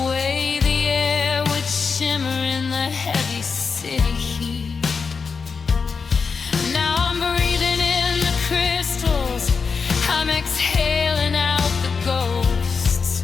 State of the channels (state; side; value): quieter; right; 5.3 dB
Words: way the air would shimmer in the heavy city heat. Now I'm breathing in the crystals, I'm exhaling out the ghosts,